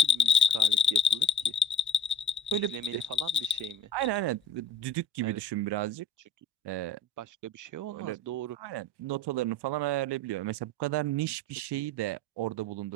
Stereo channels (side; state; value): both; normal; correlation 0.46